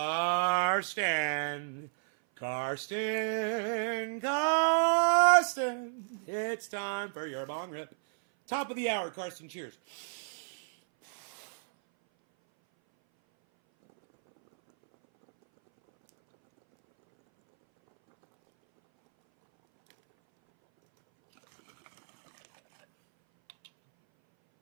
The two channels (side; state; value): left; silent; 57 dB below the other